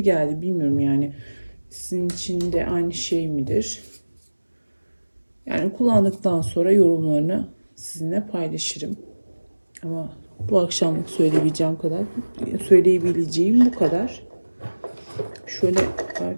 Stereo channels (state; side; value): inverted; both; correlation -1.00